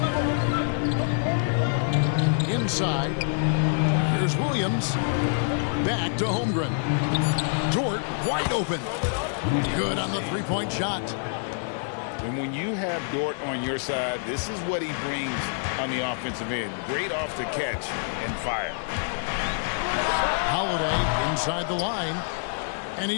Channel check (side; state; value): right; silent; digital silence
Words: Inside. Here's Williams. Back to Holmgren. Dort wide open. Good on the three-point shot. And when you have Dort on your side, this is what he brings on the offensive end. Great off the catch and fire. Holiday inside the line, and